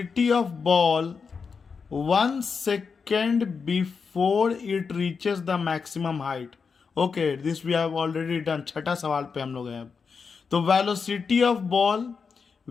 of ball 1 second before it reaches the maximum height. Okay, this we have already done. छठा सवाल पे हम लोग हैं अब। तो velocity of ball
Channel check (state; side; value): quieter; right; 5.5 dB